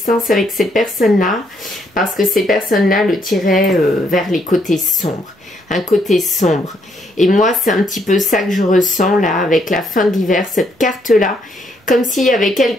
avec ces personnes-là parce que ces personnes-là le tiraient vers les côtés sombres. Un côté sombre. Et moi, c'est un petit peu ça que je ressens là avec la fin de l'hiver, cette carte-là. Comme s'il y avait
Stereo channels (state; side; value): normal; both; correlation 0.73